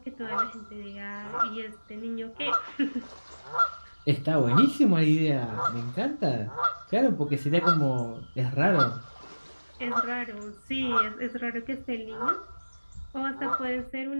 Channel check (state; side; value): inverted; both; correlation -1.00